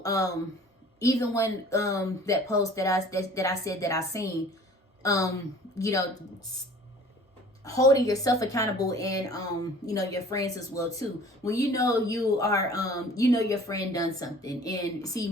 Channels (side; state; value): both; normal; correlation 0.48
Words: even when that post that I said that I seen, holding yourself accountable, and your friends as well too. When you are your friend done something, and see